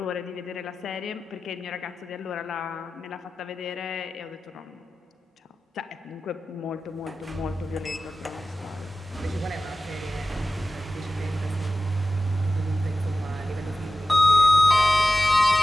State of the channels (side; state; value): both; normal; correlation 0.95